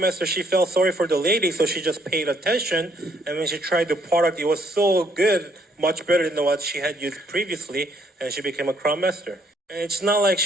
Master, she felt sorry for the lady, so she just paid attention. And when she tried the product, it was so good, much better than what she had used previously, and she became a Crown Master. And it's not like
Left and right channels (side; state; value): both; normal; correlation 0.68